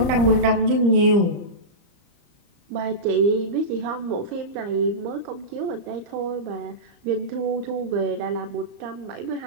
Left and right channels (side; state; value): left; late; 34 ms